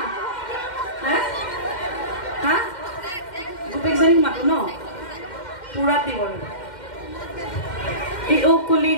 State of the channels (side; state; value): right; late; 2.1 ms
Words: হা গোটেইজনীক মাতো ন পুৰাত দিব এই অকুলি